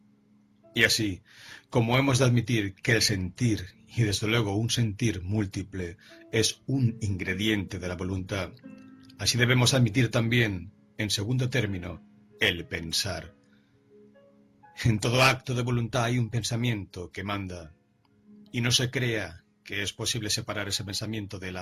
Y así, como hemos de admitir que el sentir, y desde luego un sentir múltiple, es un ingrediente de la voluntad, así debemos admitir también, en segundo término, el pensar. En todo acto de voluntad hay un pensamiento que manda, y no se crea que es posible separar ese pensamiento de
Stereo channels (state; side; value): identical; both; correlation 1.00